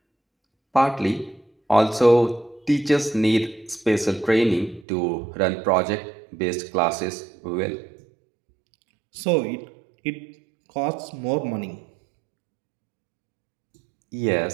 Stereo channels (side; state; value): left; drops out; at 4.9 s